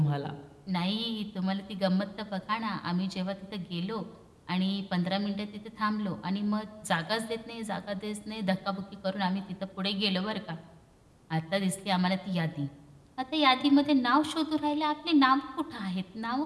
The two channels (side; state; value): both; identical; correlation 1.00